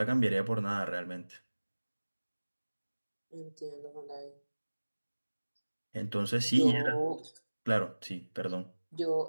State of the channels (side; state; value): both; inverted; correlation -1.00